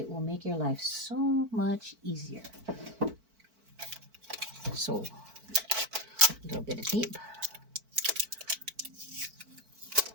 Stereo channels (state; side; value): late; left; 4.5 ms